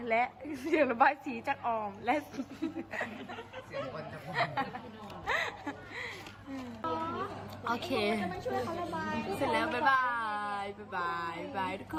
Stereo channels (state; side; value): identical; both; correlation 1.00